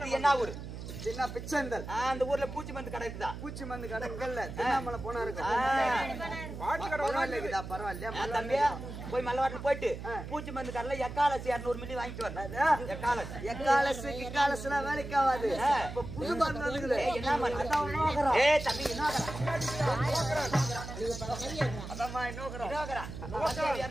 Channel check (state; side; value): noise; right; hum, 9 dB below the sound